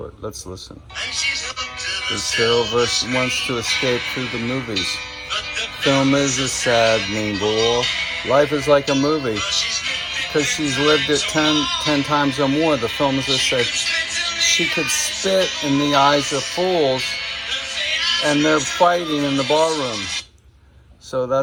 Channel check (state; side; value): identical; both; correlation 1.00